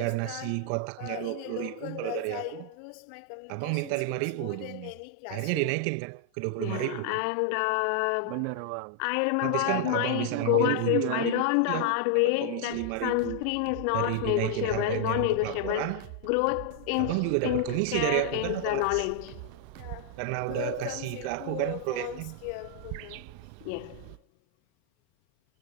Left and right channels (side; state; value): both; different; correlation 0.00